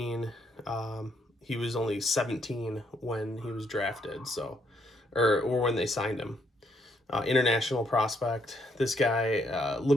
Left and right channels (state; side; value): normal; both; correlation 0.72